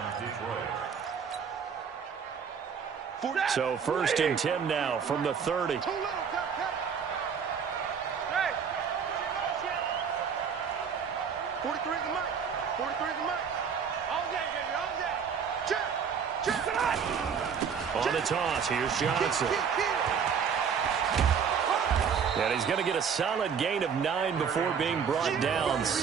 Detroit. So first and 10 now from the 30. 43 is the mic. 43 is the mic. All day, baby, all day. On the toss, here's Johnson. And he's going to get a solid gain of 9 before being brought down.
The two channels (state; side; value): quieter; left; 6.8 dB